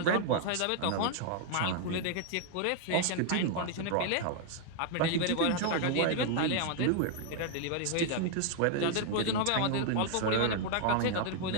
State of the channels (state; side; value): different; both; correlation 0.00